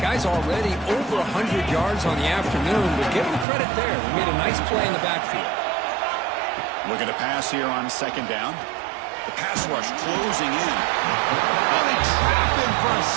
Guy's already over 100 yards on the afternoon, but give him credit there. He made a nice play in the backfield. Looking to pass here on second down. The pass rush closing in. Oh, they trap him for a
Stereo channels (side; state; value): left; drops out; at 3.5 s